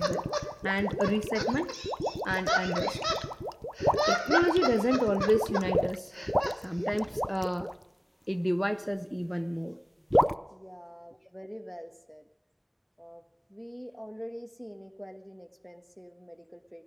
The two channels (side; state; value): both; identical; correlation 1.00